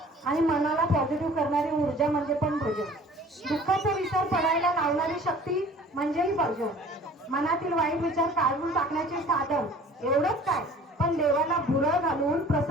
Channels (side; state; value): both; normal; correlation 0.48